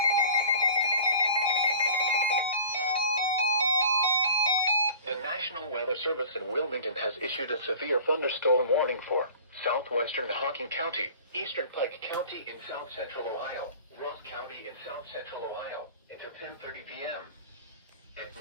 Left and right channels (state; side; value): inverted; both; correlation -0.44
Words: National Weather Service in Wilmington has issued a severe thunderstorm warning for southwestern Hocking County, eastern Pike County in south central Ohio, Ross County in south central Ohio, until 10:30 p.m. At